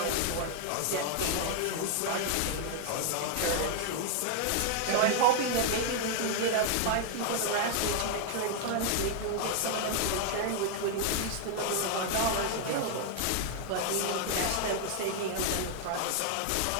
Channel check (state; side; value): different; both; correlation 0.00